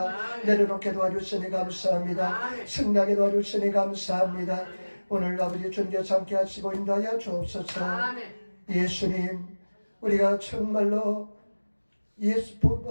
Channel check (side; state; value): both; inverted; correlation -1.00